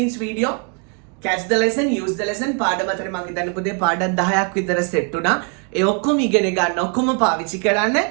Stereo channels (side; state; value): left; quieter; 36.5 dB